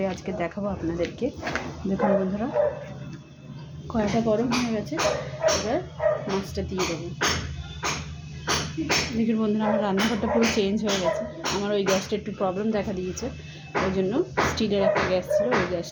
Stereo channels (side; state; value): both; identical; correlation 1.00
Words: আজকে দেখাবো আপনাদেরকে। দেখুন বন্ধুরা, কড়াইটা গরম হয়ে গেছে, এবার মাছটা দিয়ে দেবো। দেখুন বন্ধুরা, আমার রান্নাঘরটা পুরো চেঞ্জ হয়ে গেছে। আমার ওই গ্যাসটা একটু প্রবলেম দেখা দিয়েছে, ওই জন্য স্টিলের একটা গ্যাস ছিল, ওই